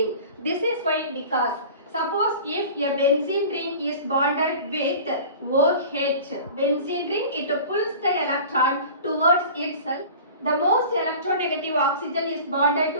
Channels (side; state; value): both; inverted; correlation -0.39